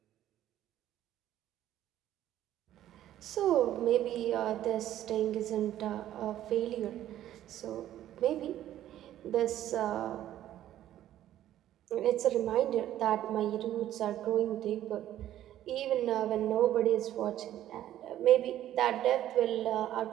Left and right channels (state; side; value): quieter; left; 12.5 dB